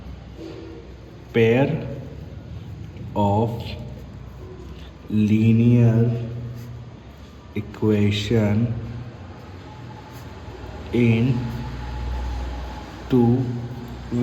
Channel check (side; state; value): both; identical; correlation 1.00